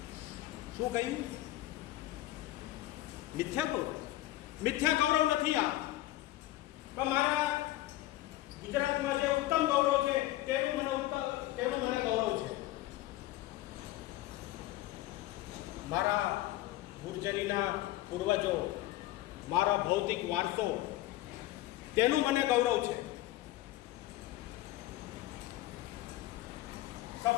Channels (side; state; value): right; quieter; 16.1 dB